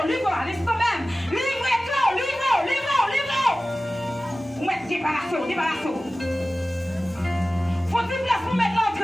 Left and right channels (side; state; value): both; normal; correlation 0.96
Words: allez, quand même. Livrez cœur, livrez. Vous mettez débarrassez. Faut-il place pour mettre